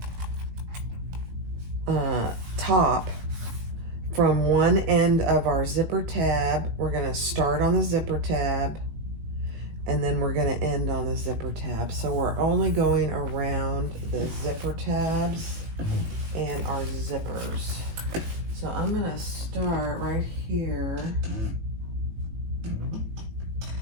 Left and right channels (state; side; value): late; left; 18 ms